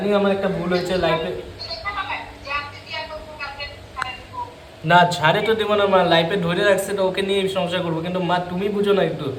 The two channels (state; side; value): identical; both; correlation 1.00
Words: আমার একটা ভুল হয়েছে লাইফে। না ছাড়ে তো দেবো না মা, লাইফে ধরে রাখছে তো ওকে নিয়ে সংসার করবো, কিন্তু মা তুমি বুঝো না একটু।